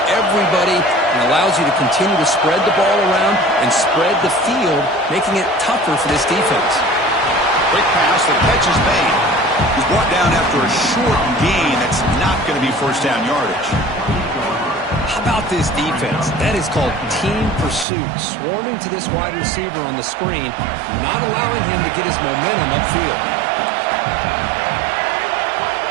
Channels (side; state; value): left; drops out; at 17.9 s